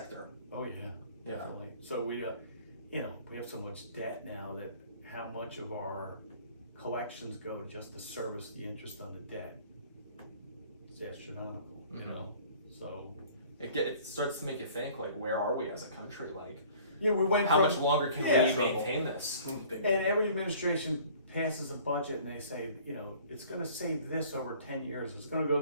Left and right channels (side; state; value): both; inverted; correlation -0.51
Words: Oh yeah, definitely. So we, you know, we have so much debt now that how much of our collections go just to service the interest on the debt? It's astronomical, you know. So it starts to make you think, like, where are we as a country? Like, yeah, we went. How much longer can we maintain this? And every administration passes a budget and they say, you know, it's going to save this over 10 years. It's going to go